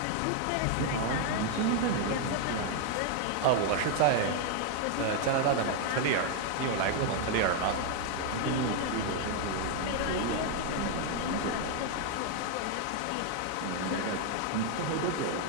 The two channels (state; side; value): different; both; correlation 0.00